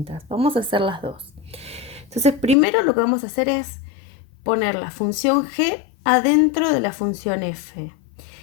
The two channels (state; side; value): drops out; right; at 2.6 s